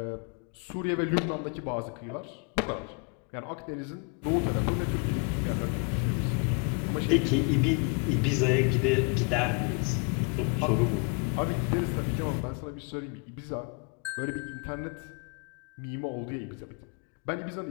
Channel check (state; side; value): quieter; right; 34.5 dB